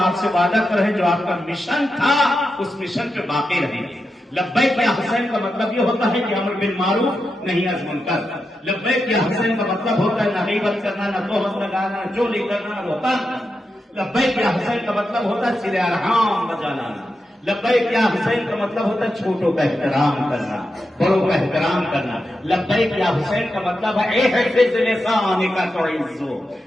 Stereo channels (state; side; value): normal; both; correlation 0.88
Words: آپ سے وعدہ کریں جو آپ کا مشن تھا اس مشن پہ باقی رہیں. لبیک یا حسین کا مطلب یہ ہوتا ہے کہ امر بالمعروف نہیں از منکر. لبیک یا حسین کا مطلب ہوتا ہے نہ غیبت کرنا، نہ تہمت لگانا، نہ چوری کرنا، نہ روتان. لبیک یا حسین کا مطلب ہوتا ہے صلہ ارحام بجا لانا. لبیک یا حسین کا مطلب ہوتا ہے چھوٹوں کا احترام کرنا، بڑوں کا احترام کرنا. لبیک یا حسین کا مطلب ہے احفظ لسانک تعز.